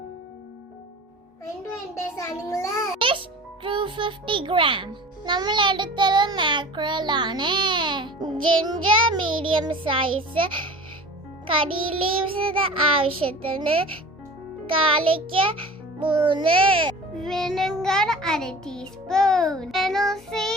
Fish 250 gram. നമ്മൾ എടുത്തത് മാക്രൽ ആണ്. ജിഞ്ചർ മീഡിയം സൈസ്, കറി leaves ആവശ്യത്തിന്, garlic 3, vinegar 1 teaspoon, fennel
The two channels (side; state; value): both; normal; correlation 0.40